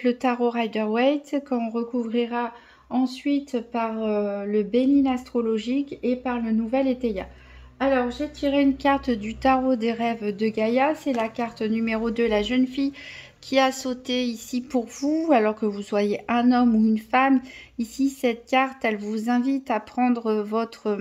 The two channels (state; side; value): identical; both; correlation 1.00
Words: le tarot Rider-Waite qu'on recouvrira ensuite par le Béline astrologique et par le Nouvel Étéia. Alors j'ai tiré une carte du tarot des rêves de Gaïa, c'est la carte numéro 2, la jeune fille qui a sauté ici pour vous, alors que vous soyez un homme ou une femme. Ici, cette carte, elle vous invite à prendre votre